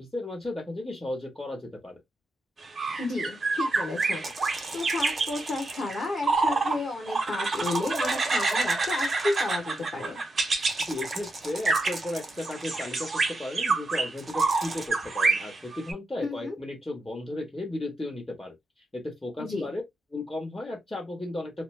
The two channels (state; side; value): normal; both; correlation 0.85